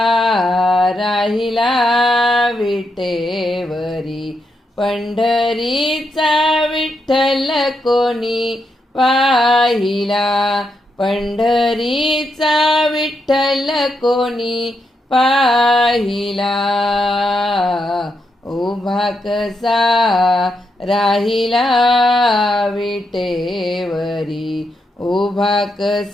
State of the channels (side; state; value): both; normal; correlation 0.82